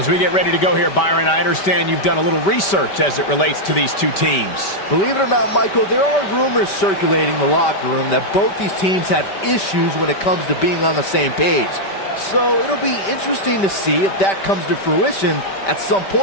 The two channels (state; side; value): late; right; 5.1 ms